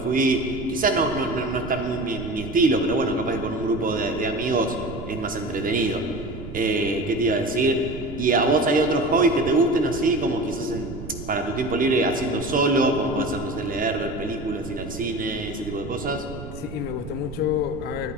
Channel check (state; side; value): noise; right; rumble, 11 dB below the sound